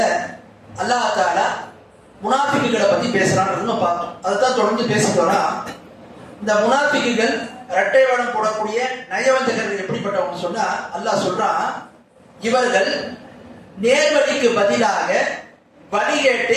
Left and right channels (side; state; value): both; identical; correlation 1.00